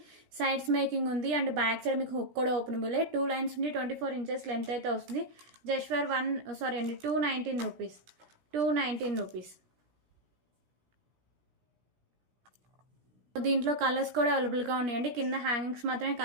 సైడ్స్ మేకింగ్ ఉంది అండ్ బ్యాక్ సైడ్ మీకు హుక్ కూడా ఓపెనబుల్. 2 లైన్స్ ఉండి 24 ఇంచెస్ లెంత్ అయితే వస్తుంది. Just for 219 rupees. 219 రూపీస్. దీంట్లో కలర్స్ కూడా అవైలబుల్గా ఉన్నాయండి. కింద హ్యాంగింగ్స్ మాత్రమే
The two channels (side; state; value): left; late; 17 ms